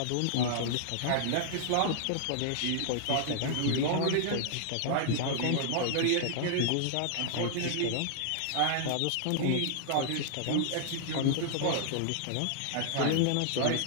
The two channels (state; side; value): different; both; correlation -0.01